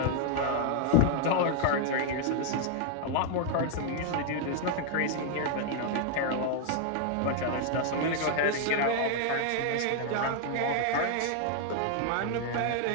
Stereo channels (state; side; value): different; both; correlation 0.00